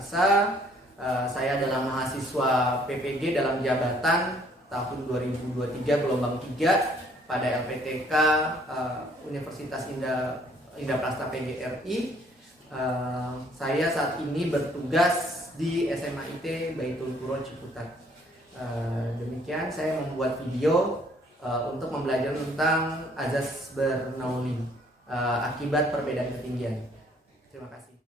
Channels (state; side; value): normal; both; correlation 0.62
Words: Saya adalah mahasiswa PPG dalam jabatan tahun 2023 gelombang 3 pada LPTK Universitas Indah PGRI. Saya saat ini bertugas di SMA IT Baitul Quro Ciputat. Demikian saya membuat video untuk membelajar tentang azas Bernoulli. Akibat perbedaan ketinggian. Terima kasih.